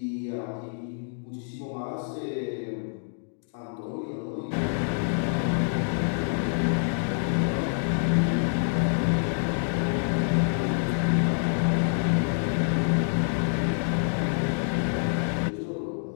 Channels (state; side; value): silent; right; digital silence